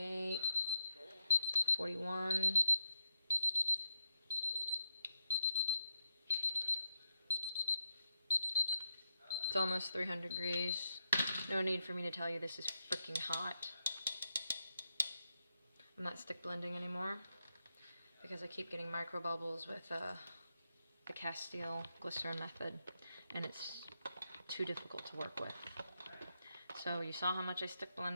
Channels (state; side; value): inverted; both; correlation -0.83